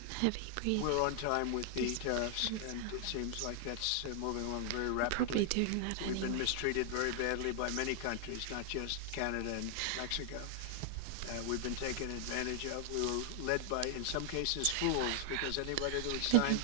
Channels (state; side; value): different; both; correlation 0.00